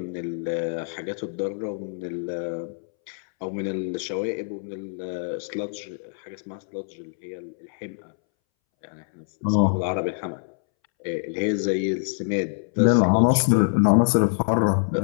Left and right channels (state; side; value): silent; right; 62 dB below the other